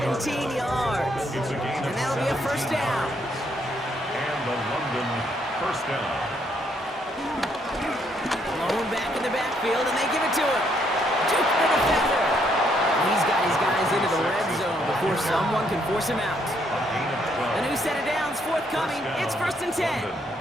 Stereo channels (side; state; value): both; normal; correlation 0.72